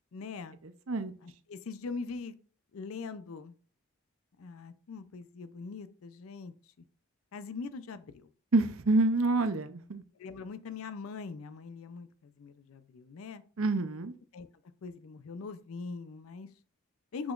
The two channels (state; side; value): normal; both; correlation 0.47